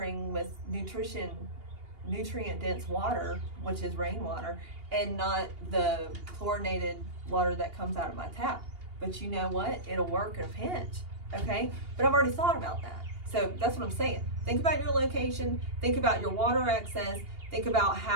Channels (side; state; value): left; late; 2.8 ms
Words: with nutrient dense water, which is rainwater, and not the chlorinated water that comes out of my tap. But you know what? It'll work in a pinch. Okay? But I've already thought about that. So that's what I'm saying. Think about your location. Think about your water access. Think about